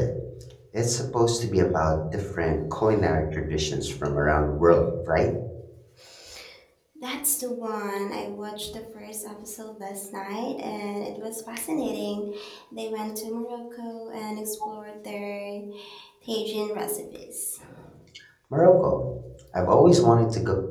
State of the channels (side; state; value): both; identical; correlation 1.00